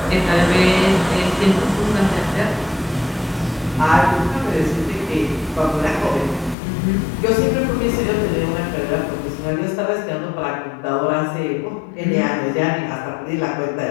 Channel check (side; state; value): right; drops out; at 6.6 s